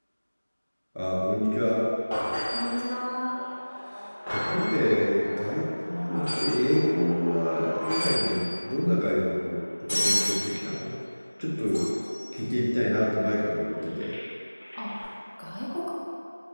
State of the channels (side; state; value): both; inverted; correlation -1.00